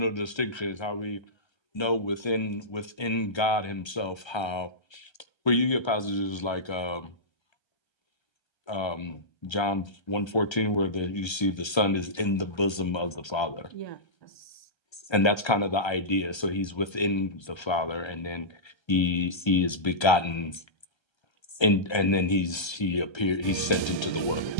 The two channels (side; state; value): right; late; 1.3 ms